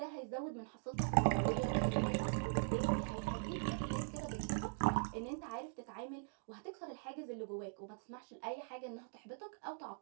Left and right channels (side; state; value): left; silent; digital silence